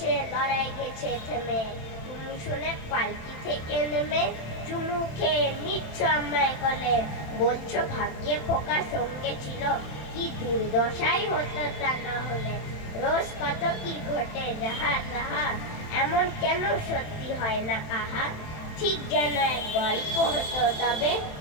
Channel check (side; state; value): right; late; 27 ms